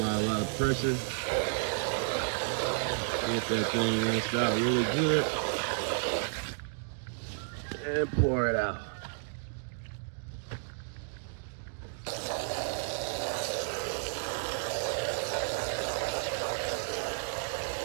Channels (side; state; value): left; silent; digital silence